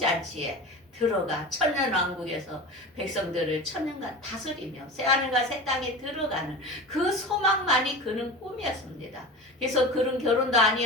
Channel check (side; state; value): both; normal; correlation 0.31